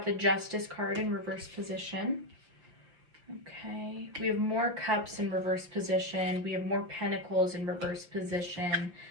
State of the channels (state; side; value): late; left; 5.7 ms